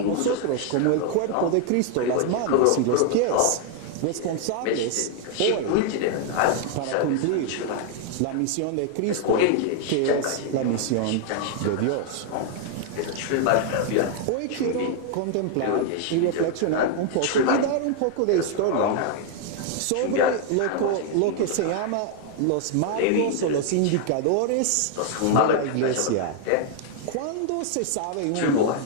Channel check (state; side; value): different; both; correlation 0.00